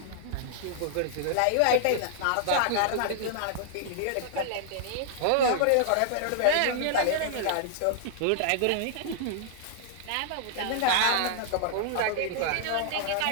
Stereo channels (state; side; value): different; both; correlation -0.01